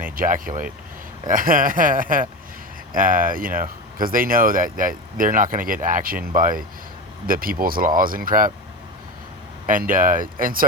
ejaculate. You know, because they know that they're not going to get action by the people's laws and crap, and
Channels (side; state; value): both; normal; correlation 0.23